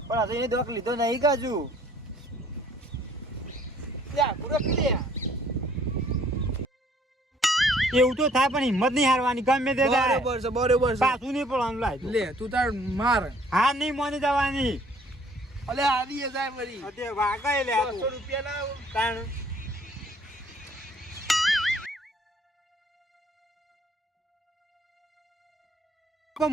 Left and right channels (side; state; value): both; normal; correlation 0.59